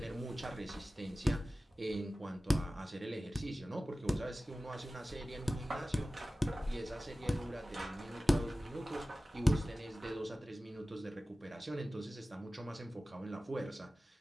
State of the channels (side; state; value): both; normal; correlation 0.96